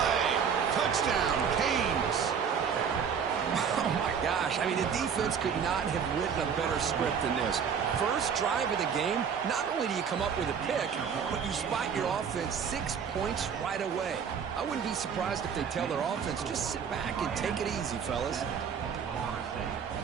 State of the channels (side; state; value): left; quieter; 7.0 dB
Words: Touchdown, Canes. Oh, my gosh. I mean, the defense could not have written a better script than this. First drive of the game, not only do you come up with a pick, but you spot your offense 6 points right away. I wouldn't be surprised if they tell their offense, just sit back and take it easy, fellas.